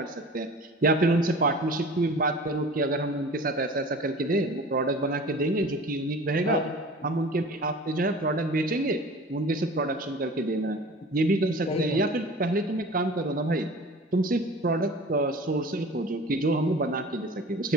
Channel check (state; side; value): normal; both; correlation 0.41